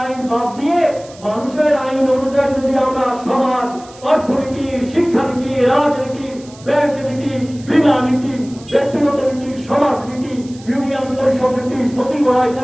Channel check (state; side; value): noise; right; hiss, 22 dB below the sound